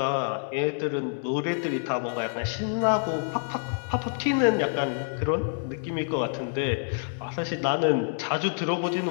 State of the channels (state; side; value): silent; right; 60 dB below the other